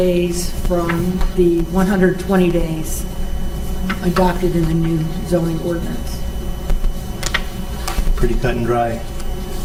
from the 120 days adopted in the new zoning ordinance. Pretty cut and dry.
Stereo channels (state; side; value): identical; both; correlation 1.00